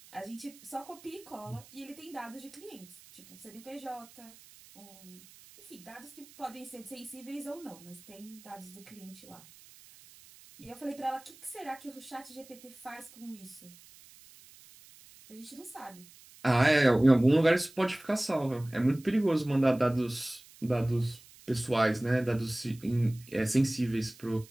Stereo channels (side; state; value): right; noise; hiss, 22 dB below the sound